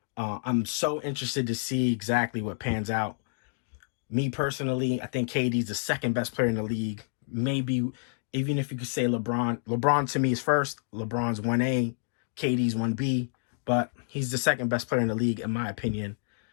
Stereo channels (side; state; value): right; silent; digital silence